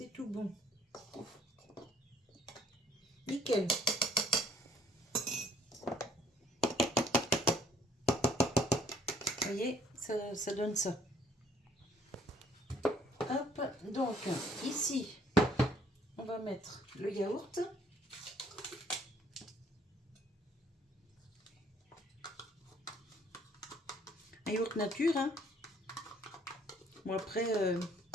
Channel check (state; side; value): normal; both; correlation 0.61